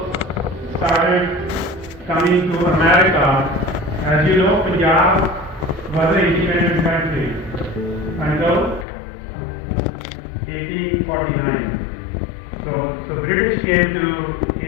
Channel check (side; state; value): right; drops out; at 8.8 s